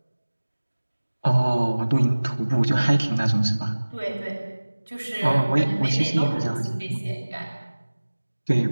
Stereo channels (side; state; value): both; inverted; correlation -1.00